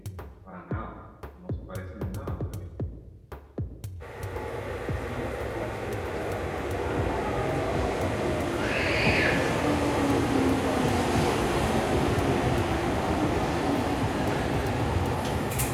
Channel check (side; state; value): both; identical; correlation 1.00